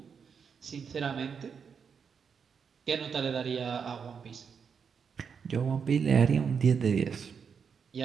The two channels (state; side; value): quieter; left; 6.5 dB